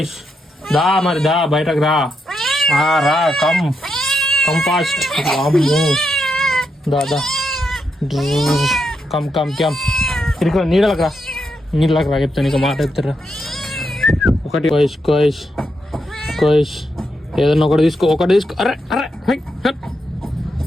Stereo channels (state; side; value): normal; both; correlation 0.83